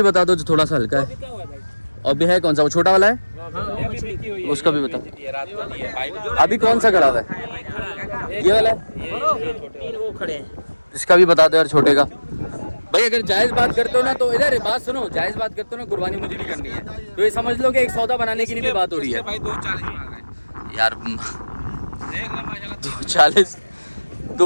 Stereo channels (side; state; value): both; inverted; correlation -1.00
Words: बता दो जो थोड़ा सा हल्का है, क्या हुआ भाई? और भी है कौन सा, वो छोटा वाला है, उसका भी बता। अभी कौन सा खड़ा हुआ है? ये वाला है? 3 वो खड़े हैं। इसका भी बता दो यार छोटे का। भाई अगर जायज बात करते हो ना तो इधर बात सुनो, जायज बात करते हो ना कुर्बानी मुझे भी करनी है, तो ये समझ लो कि एक सौदा बनाने की भी बात हो रही है भाई 240 मांग रहे यार। देख ले माशाल्लाह 240